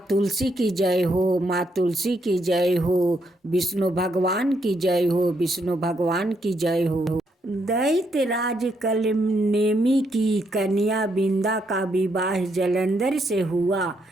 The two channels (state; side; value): normal; both; correlation 0.76